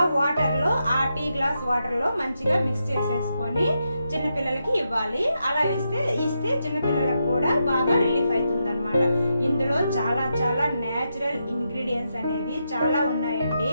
వాటర్ లో, ఆ టీ గ్లాస్ వాటర్ లో మంచిగా మిక్స్ చేసేసుకొని చిన్నపిల్లలకి ఇవ్వాలి. అలా ఇస్తే చిన్నపిల్లలకు కూడా బాగా రిలీఫ్ అవుతుంది అనమాట. ఇందులో చాలా చాలా నేచురల్ ఇంగ్రీడియంట్స్ అనేవి చాలా ఉన్నాయండి.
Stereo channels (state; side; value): inverted; both; correlation -0.84